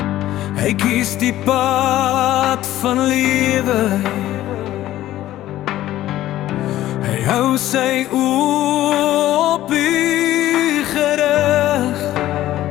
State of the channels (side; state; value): right; quieter; 14.2 dB